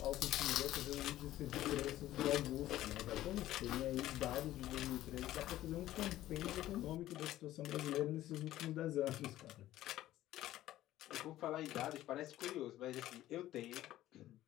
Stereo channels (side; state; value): right; quieter; 14.4 dB